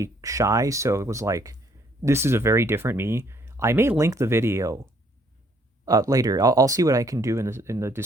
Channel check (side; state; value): both; normal; correlation 0.65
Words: shy, so it was like, this is a very different me. I may link the video later. I'll see what I can do in the